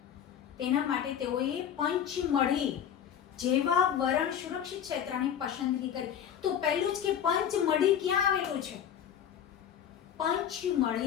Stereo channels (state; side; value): quieter; right; 9.1 dB